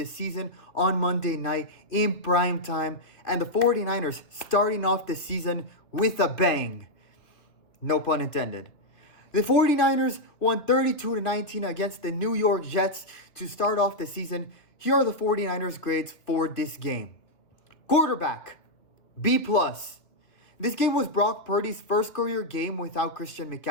season on Monday night in prime time. And the 49ers starting off the season with a bang. No pun intended. The 49ers won 32-19 against the New York Jets to start off the season. Here are the 49ers grades for this game. Quarterback, B+. This game was Brock Purdy's first career game without Christian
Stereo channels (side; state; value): right; late; 2.4 ms